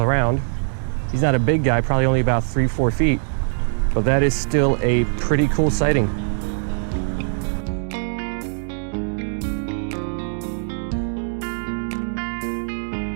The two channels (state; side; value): silent; left; digital silence